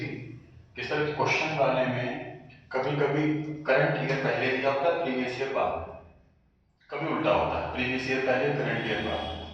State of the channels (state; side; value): identical; both; correlation 1.00